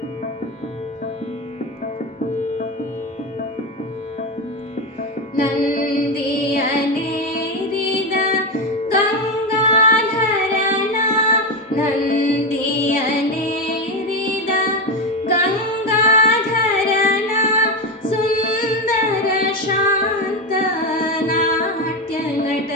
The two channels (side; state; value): both; normal; correlation 0.14